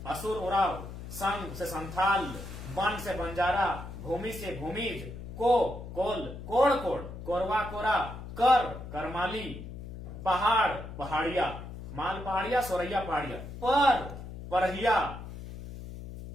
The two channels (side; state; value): left; noise; hum, 11 dB below the sound